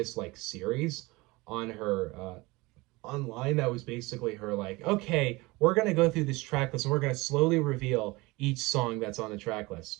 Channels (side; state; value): left; quieter; 22.9 dB